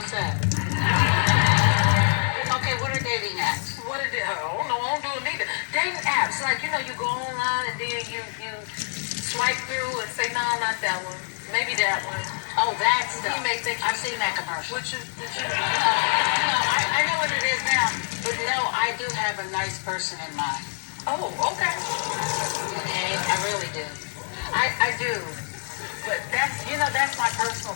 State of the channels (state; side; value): silent; right; digital silence